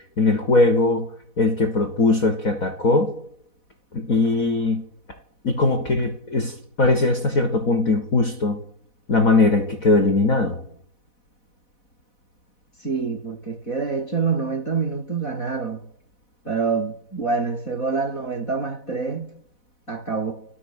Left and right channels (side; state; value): right; late; 4.1 ms